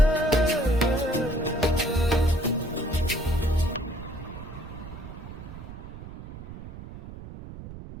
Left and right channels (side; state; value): right; noise; rumble, 13 dB below the sound